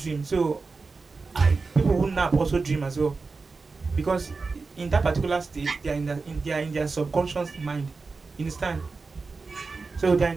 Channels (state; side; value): quieter; left; 4.2 dB